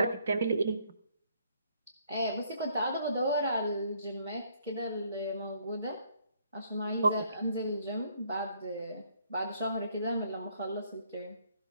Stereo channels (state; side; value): inverted; both; correlation -0.67